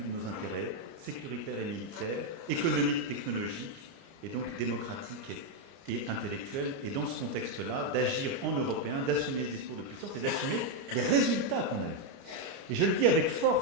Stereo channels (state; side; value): late; left; 29 ms